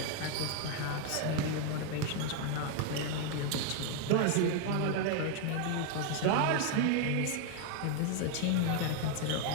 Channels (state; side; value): different; both; correlation 0.01